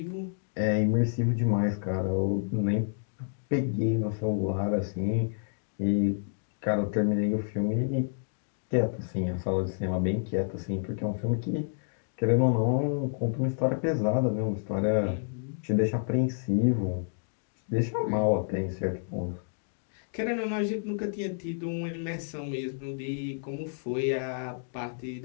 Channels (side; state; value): right; silent; digital silence